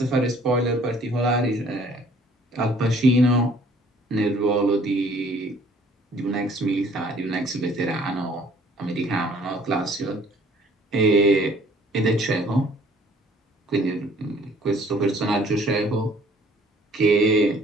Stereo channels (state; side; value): normal; both; correlation 0.57